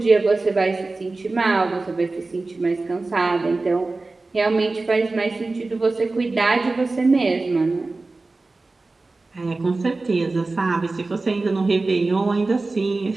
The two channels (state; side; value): quieter; left; 3.4 dB